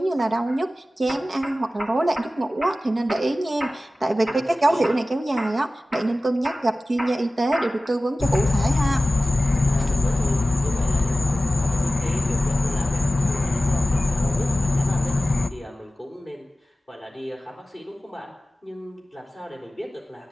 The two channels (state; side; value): normal; both; correlation 0.96